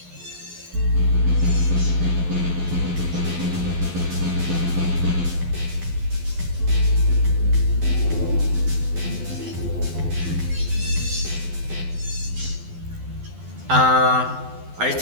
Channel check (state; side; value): late; left; 12 ms